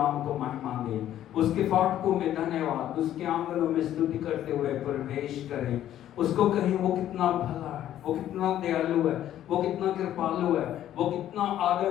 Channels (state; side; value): quieter; right; 11.9 dB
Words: को महिमा दें, उसके फाटकों में धन्यवाद, उसके आंगनों में स्तुति करते हुए प्रवेश करें। उसको कहें वो कितना भला है, वो कितना दयालु है, वो कितना कृपालु है, वो कितना